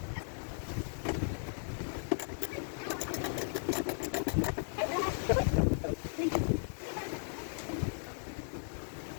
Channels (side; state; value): right; silent; digital silence